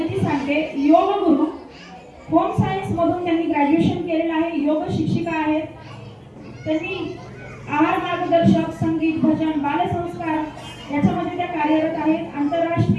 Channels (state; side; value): identical; both; correlation 1.00